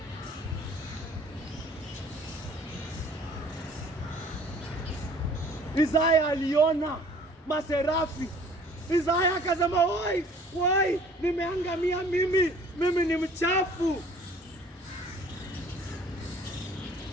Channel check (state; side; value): normal; both; correlation 0.53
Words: Isaya aliona maserafi. Isaya akasema, wai, nimeangamia mimi ni mchafu.